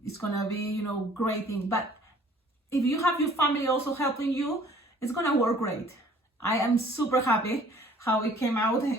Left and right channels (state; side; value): normal; both; correlation 0.55